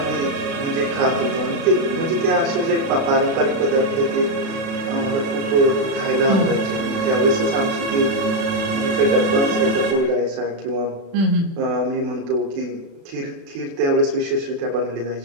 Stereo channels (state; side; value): late; left; 36 ms